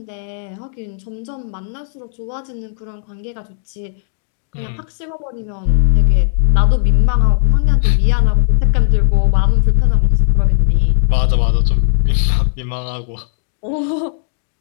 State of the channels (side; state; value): right; silent; digital silence